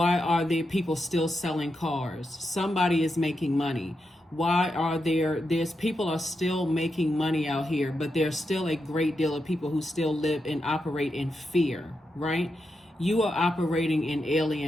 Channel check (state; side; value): normal; both; correlation 0.86